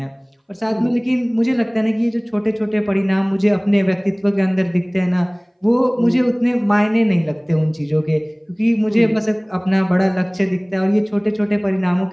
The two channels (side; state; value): both; identical; correlation 1.00